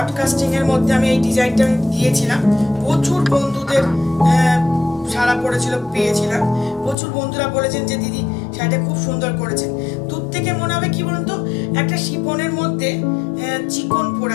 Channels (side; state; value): right; drops out; at 7.0 s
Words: এর মধ্যে আমি এই ডিজাইনটা দিয়েছিলাম, প্রচুর বন্ধুদের সারা পড়েছিল, পেয়েছিলাম। প্রচুর বন্ধুরা বলেছেন যে দিদি শাড়িটা খুব সুন্দর করেছেন। দূর থেকে মনে হবে কি বলুন তো, একটা শিফনের মধ্যে চিকন পরে